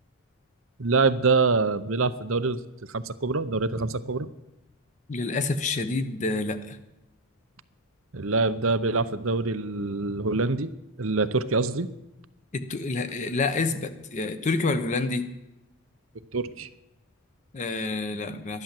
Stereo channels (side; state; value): both; normal; correlation 0.03